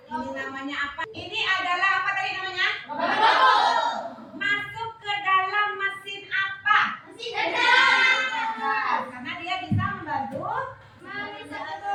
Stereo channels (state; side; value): identical; both; correlation 1.00